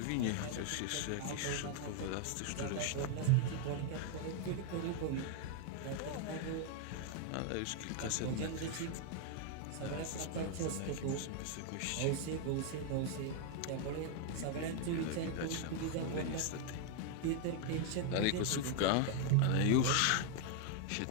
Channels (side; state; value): both; different; correlation 0.00